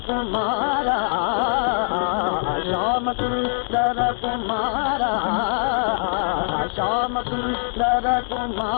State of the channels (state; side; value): silent; right; 64 dB below the other